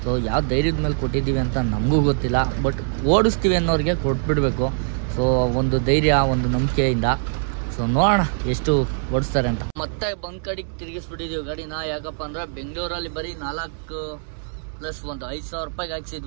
ಸೊ ಯಾವ ಧೈರ್ಯದ ಮೇಲೆ ಕೊಟ್ಟಿದ್ದೀವಿ ಅಂತ ನಮಗೂ ಗೊತ್ತಿಲ್ಲ. ಬಟ್ ಓಡಿಸ್ತೀವಿ ಅನ್ನೋರಿಗೆ ಕೊಟ್ಬಿಡ್ಬೇಕು. ಸೊ ಒಂದು ಧೈರ್ಯ ಒಂದು ನಂಬಿಕೆಯಿಂದ. ಸೊ ನೋಡೋಣ ಎಷ್ಟು ಓಡಿಸ್ತಾರೆ ಅಂತ. ಮತ್ತೆ ಬಂದ್ ಕಡೆಗೆ ತಿರುಗಿಸ್ಬಿಟ್ಟಿದ್ದೀವಿ ಗಾಡಿನ. ಯಾಕಪ್ಪ ಅಂದ್ರೆ ಬೆಂಗಳೂರಲ್ಲಿ ಬರೀ 4 ಪ್ಲಸ್ ಒಂದು 5,000 ರೂಪಾಯಿಗೆ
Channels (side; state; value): left; silent; 64 dB below the other